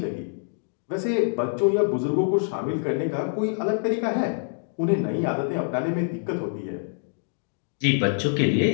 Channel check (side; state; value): right; silent; 61 dB below the other